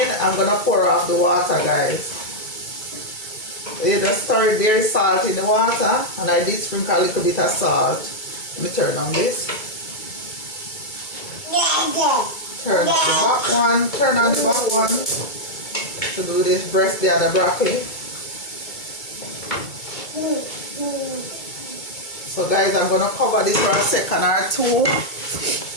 I'm gonna pour off the water, guys. So you just stir it very salt in the water, and I did sprinkle a little bit of salt. Let me turn on this. Turn up the back one, turn on the back one to do this breast the other broccoli. So guys, I'm gonna cover this for a second or two,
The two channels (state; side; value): late; right; 2.2 ms